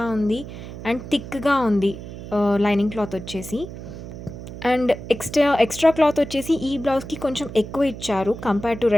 ఉంది అండ్ థిక్గా ఉంది లైనింగ్ క్లాత్ వచ్చేసి. అండ్ ఎక్స్ట్రా క్లాత్ వచ్చేసి ఈ బ్లౌజ్కి కొంచెం ఎక్కువ ఇచ్చారు compare to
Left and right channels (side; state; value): right; noise; hum, 11 dB below the sound